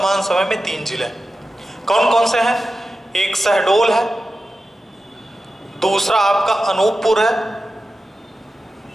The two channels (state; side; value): normal; both; correlation 0.93